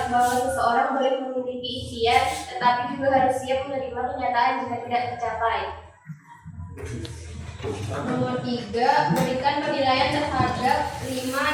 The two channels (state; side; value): identical; both; correlation 1.00